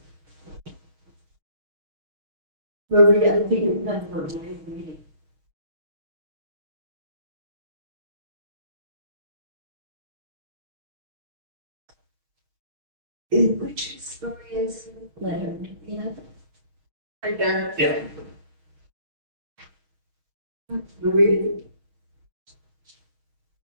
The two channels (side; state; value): left; late; 6.3 ms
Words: Marie, I think you're not for me. Which story is letter? Yeah. I don't. Yeah. Marie.